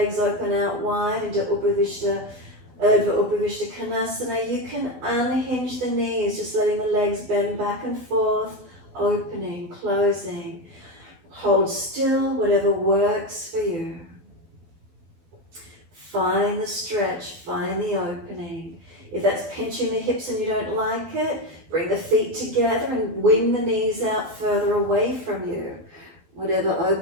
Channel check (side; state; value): left; late; 12 ms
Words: open out wide into Urdhva Upavishta Kanasana. You can unhinge the knees, just letting the legs bend back and forth, opening, closing. Hold still, whatever works for you. Find the stretch, find the opening. If that's pinching the hips and you don't like it, bring the feet together and wing the knees out further away from you. Whatever